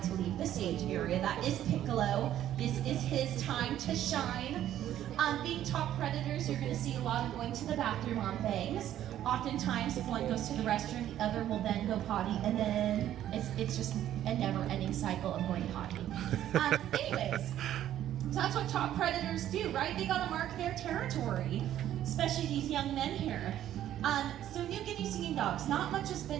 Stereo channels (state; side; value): quieter; left; 11.8 dB